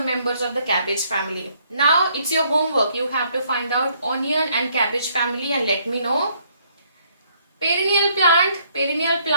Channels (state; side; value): inverted; both; correlation -0.67